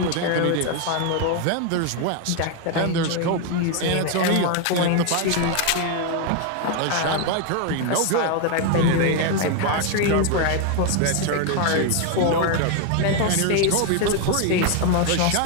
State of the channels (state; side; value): different; both; correlation 0.01